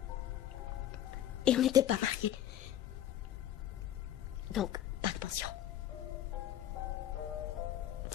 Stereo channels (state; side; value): quieter; right; 11.7 dB